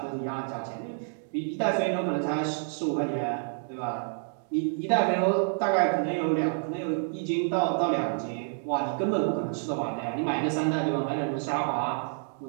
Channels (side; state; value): left; silent; 59 dB below the other